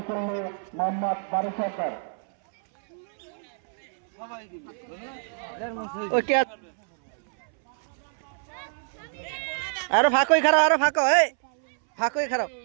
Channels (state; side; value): silent; left; 61 dB below the other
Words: মোহাম্মদ বারু সরকার আরো